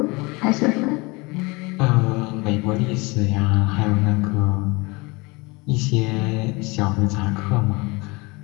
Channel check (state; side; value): quieter; right; 25.4 dB